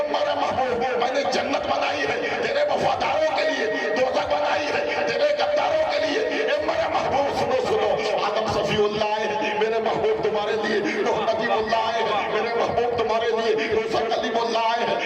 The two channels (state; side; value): identical; both; correlation 1.00